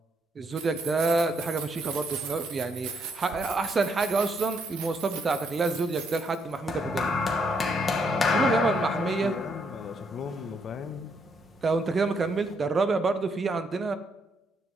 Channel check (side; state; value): both; normal; correlation 0.74